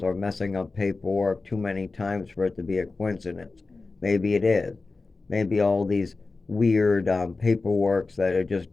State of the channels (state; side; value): quieter; right; 3.7 dB